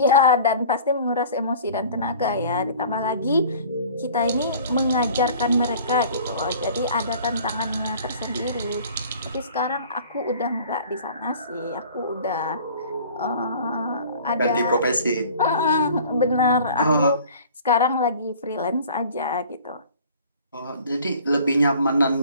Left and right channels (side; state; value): both; inverted; correlation -0.47